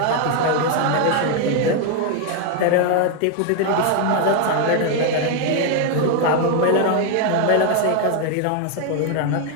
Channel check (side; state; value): both; different; correlation 0.01